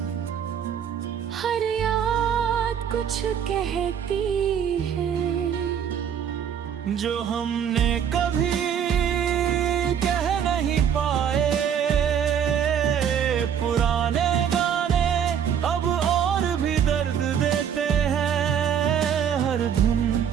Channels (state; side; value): quieter; left; 8.4 dB